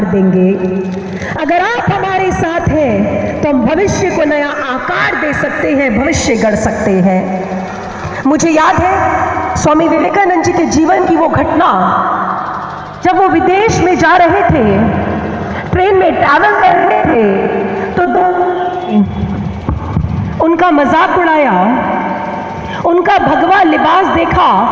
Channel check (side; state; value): both; identical; correlation 1.00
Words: देंगे। अगर आप हमारे साथ हैं तो हम भविष्य को नया आकार दे सकते हैं, भविष्य गढ़ सकते हैं। मुझे याद है स्वामी विवेकानंद जी के जीवन की वो घटना, जब वो विदेश में जा रहे थे, ट्रेन में ट्रैवल कर रहे थे, तो उनका मजाक उड़ाया, उनका भगवा लिबास देखा